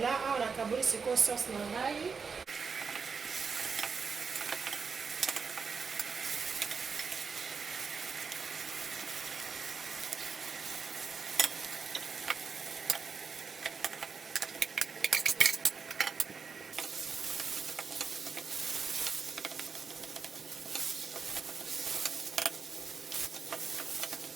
awa nakaboli sikoyo sauce na ngai.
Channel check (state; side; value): quieter; left; 5.4 dB